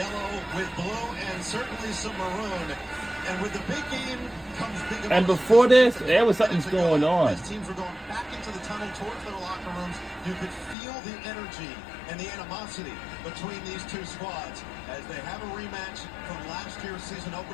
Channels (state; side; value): drops out; right; at 10.8 s